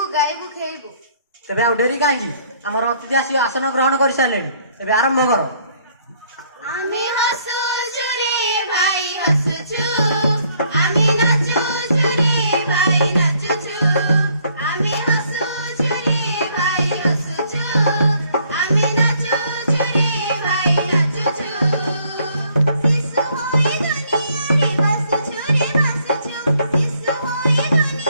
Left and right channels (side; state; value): both; inverted; correlation -0.65